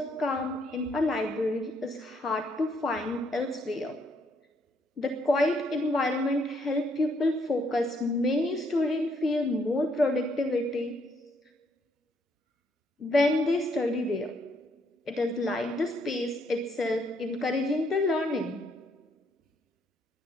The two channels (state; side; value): normal; both; correlation 0.71